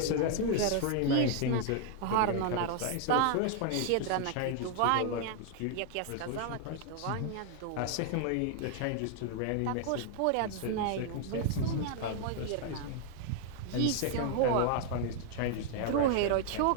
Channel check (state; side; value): different; both; correlation 0.00